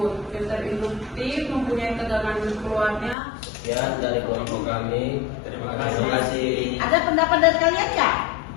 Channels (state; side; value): drops out; right; at 3.2 s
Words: Filter induktif mempunyai tegangan keluarnya. Ya, dari kelompok kami. Terima kasih. Ada pendapat dari kalian nggak